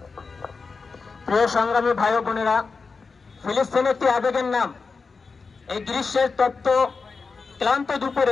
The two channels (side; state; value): right; quieter; 4.6 dB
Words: প্রিয় সংগ্রামী ভাই ও বোনেরা, ফিলিস্তিন একটি আবেগের নাম। এই গ্রীষ্মের তপ্ত ক্লান্ত